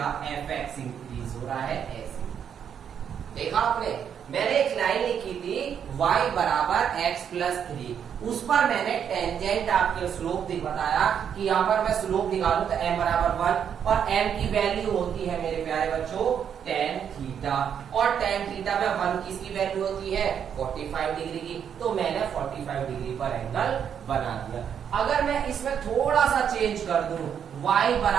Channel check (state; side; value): quieter; left; 8.2 dB